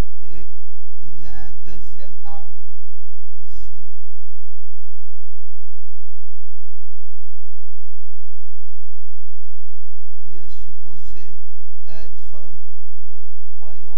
Et il y a un deuxième arbre ici qui est supposé être le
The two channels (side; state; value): right; late; 1.2 ms